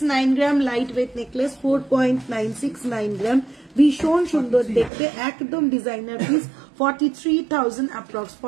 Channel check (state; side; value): drops out; left; at 4.9 s